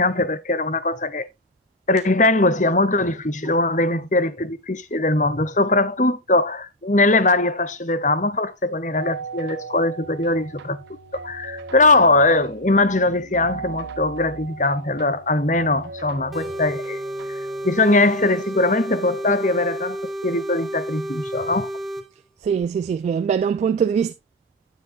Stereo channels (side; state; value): both; normal; correlation 0.04